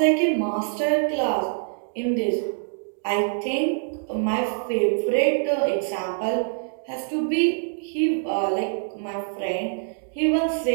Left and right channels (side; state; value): left; silent; digital silence